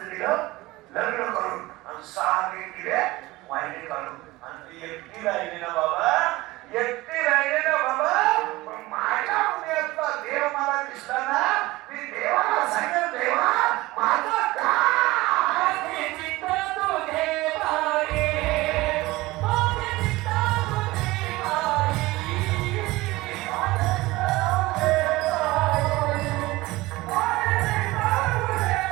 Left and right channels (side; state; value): left; quieter; 19.8 dB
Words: दिलं लग्न करून आणि 6 दिले वाहिनी काढून आणि ती एकटी राहिली ना बाबा एकटी राहिली ना बाबा. पण माझ्या हृदयातला देव मला दिसला ना मी देवाला सांगेल देवा माझं काय